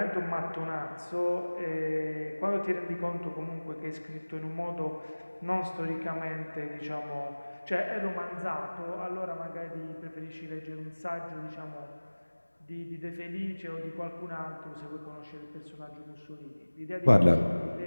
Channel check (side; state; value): both; inverted; correlation -1.00